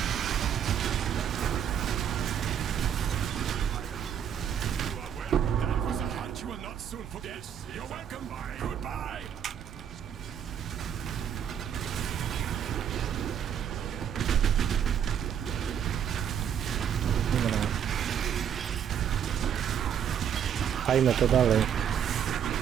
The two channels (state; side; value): quieter; left; 8.7 dB